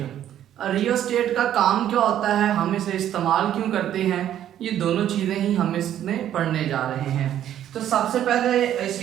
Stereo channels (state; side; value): quieter; left; 11.1 dB